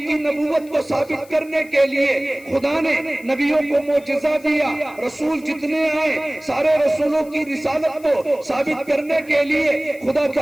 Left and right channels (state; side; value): noise; left; hiss, 25 dB below the sound